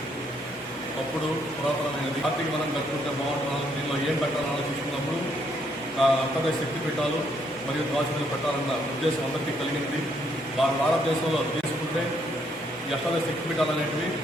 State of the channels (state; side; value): normal; both; correlation 0.71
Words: అప్పుడు పురాతనమైనది. ఆర్థిక మనం కట్టుకుంటే బాగుంటున్నాను. దీనిలో ఏం పెట్టాలని ఆలోచించుకున్నప్పుడు అంతర్దేశ శక్తి పీఠాలు మరియు ద్వాసనలు పెట్టాలన్న ఉద్దేశం అందరికీ కలిగింది. భారతదేశంలో తీసుకుంటే ఈ అష్టాదశ శక్తి పీఠాలు అనేటివి